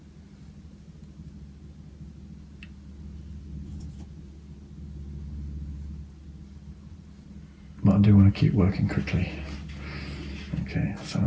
But I do want to keep working quickly. Okay, some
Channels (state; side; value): identical; both; correlation 1.00